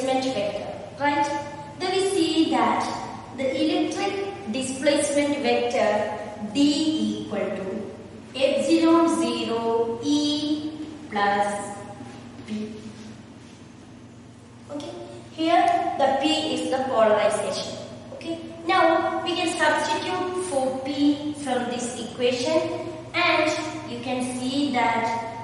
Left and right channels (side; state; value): both; identical; correlation 1.00